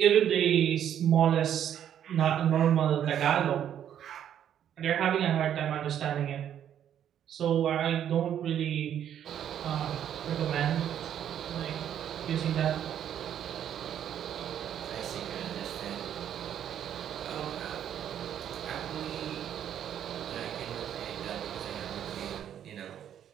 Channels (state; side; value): quieter; left; 9.9 dB